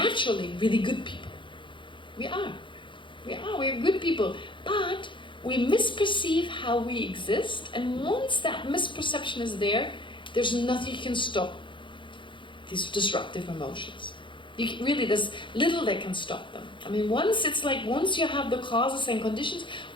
really good people. We are good people, but we misperceive how we exist, and once that misperception is there, there's nothing you can stop these disruptive emotions. There's little that can stop them. I mean, once you have the causes and conditions,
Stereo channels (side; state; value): right; late; 0.24 ms